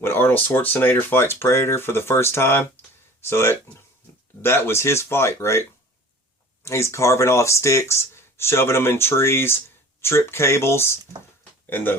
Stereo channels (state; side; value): normal; both; correlation 0.44